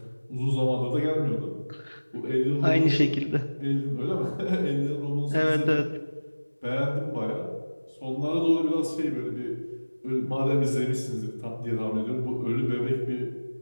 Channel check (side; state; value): both; inverted; correlation -1.00